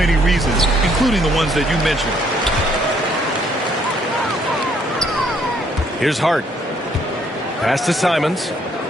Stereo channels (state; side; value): normal; both; correlation 0.67